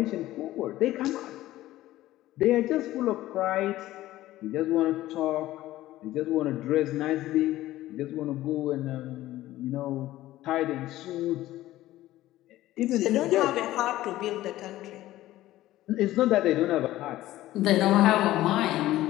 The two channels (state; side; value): quieter; right; 15.4 dB